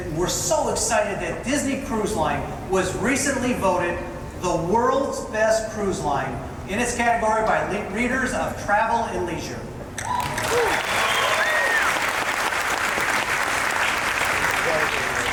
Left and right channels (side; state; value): both; identical; correlation 1.00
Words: we're so excited that Disney Cruise Line was recently voted the world's best cruise line in its category by readers of Travel and Leisure.